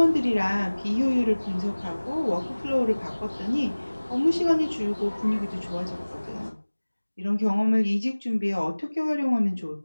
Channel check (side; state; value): both; inverted; correlation -1.00